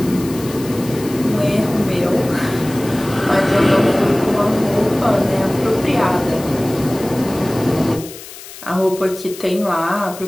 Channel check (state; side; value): noise; left; hiss, 15 dB below the sound